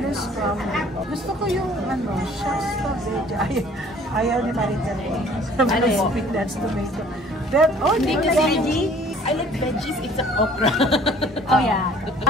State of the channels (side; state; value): both; normal; correlation 0.54